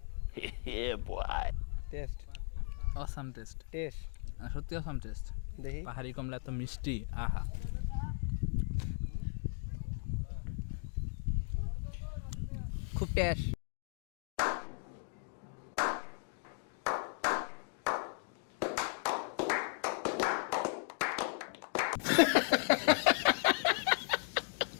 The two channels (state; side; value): silent; right; 53 dB below the other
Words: হে বয়, টেস্ট অসাম টেস্ট, টেস্ট সত্যি অসাম টেস্ট। দেখি। পাহাড়ি কমলা এত মিষ্টি, আহা। খুব টেস্ট।